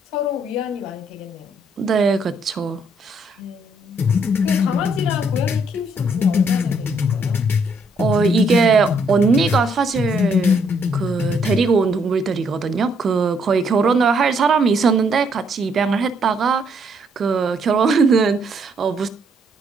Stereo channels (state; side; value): normal; both; correlation 0.70